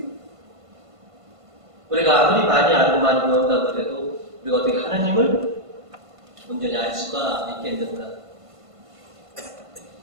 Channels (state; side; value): late; left; 1.5 ms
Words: 우리가 아무리 많이 알고 많이 배운다고 해도 우리가 어떻게 하나님을 온전히 알 수가 있겠는가.